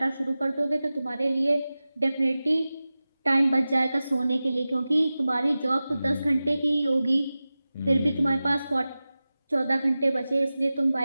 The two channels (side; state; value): both; inverted; correlation -0.96